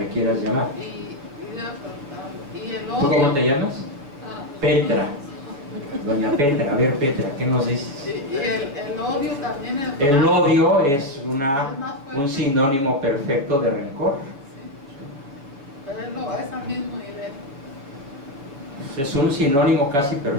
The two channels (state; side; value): late; left; 7.1 ms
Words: quieras llamar. Y el ¿Tú odio. cómo te llamas? Petra. Doña Petra, a ver Petra, ¿qué nos dices? Y el odio también. El odio es un sinónimo perfecto de rencor. Sí. Pero es al mismo nivel. Es un sinónimo casi